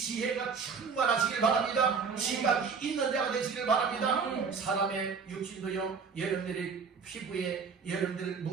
충만하시길 바랍니다. 지각이 있는 자가 되시길 바랍니다. 사람의 육신도요, 여러분들이 피부에 여러분들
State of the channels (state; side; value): quieter; left; 5.5 dB